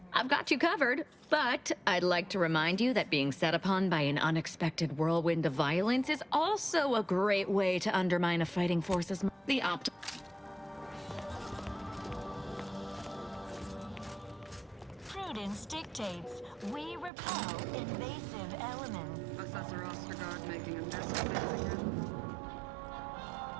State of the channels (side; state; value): left; drops out; at 17.1 s